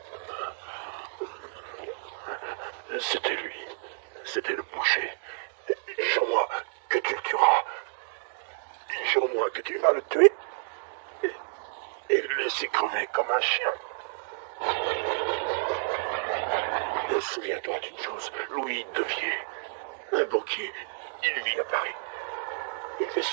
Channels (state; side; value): silent; left; digital silence